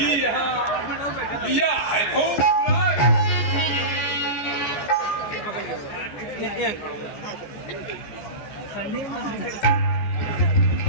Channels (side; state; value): right; late; 13 ms